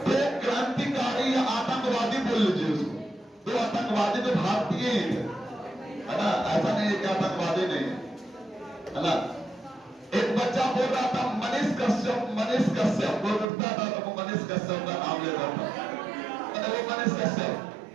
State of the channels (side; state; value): left; drops out; at 13.5 s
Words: दो क्रांतिकारी या आतंकवादी बोल लीजिए उसको, 2 आतंकवादी तो भारतीय ही थे, है ना, ऐसा नहीं है कि आतंकवादी नहीं है ना। एक बच्चा बोल रहा था मनीष कश्यप, वो उठता था तो वो मनीष कश्यप का नाम लेता था, वो मनीष कश्यप।